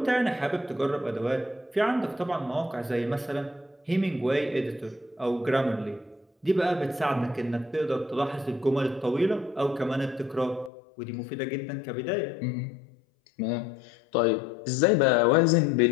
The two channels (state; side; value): drops out; right; at 10.7 s